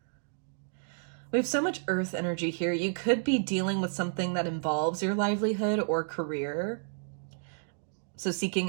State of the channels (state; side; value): silent; left; digital silence